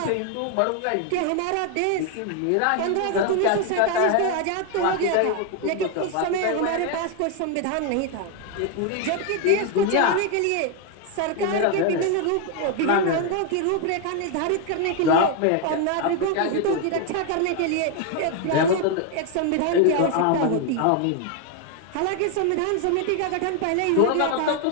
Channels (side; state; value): both; different; correlation 0.01